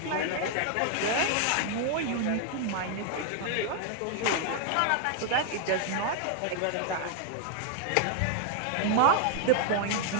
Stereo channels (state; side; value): different; both; correlation 0.00